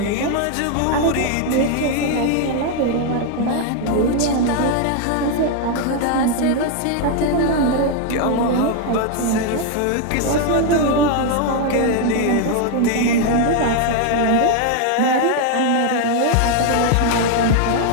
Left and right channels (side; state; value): both; different; correlation 0.01